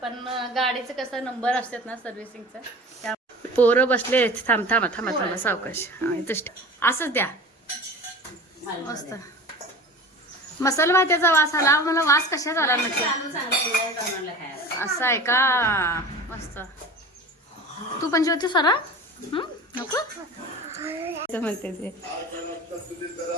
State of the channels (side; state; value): both; normal; correlation 0.36